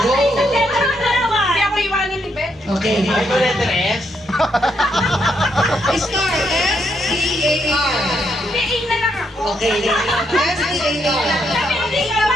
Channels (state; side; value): normal; both; correlation 0.77